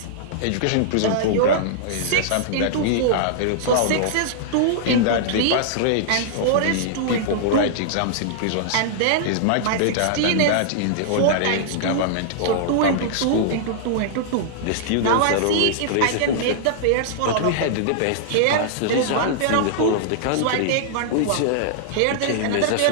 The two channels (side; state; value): both; different; correlation -0.01